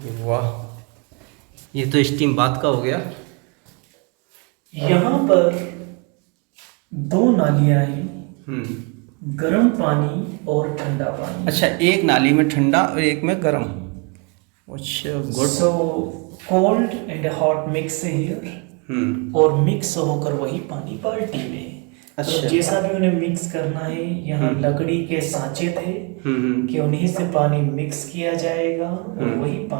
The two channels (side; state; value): left; quieter; 32.6 dB